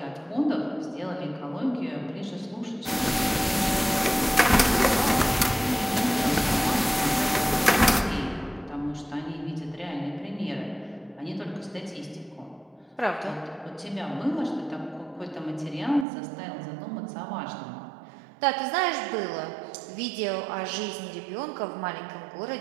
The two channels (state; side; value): drops out; left; at 16.1 s